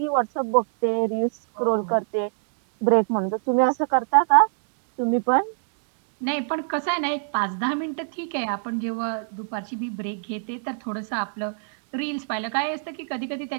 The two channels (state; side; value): silent; left; digital silence